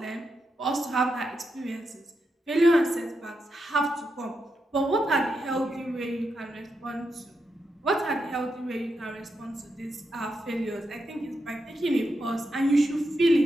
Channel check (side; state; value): both; normal; correlation 0.85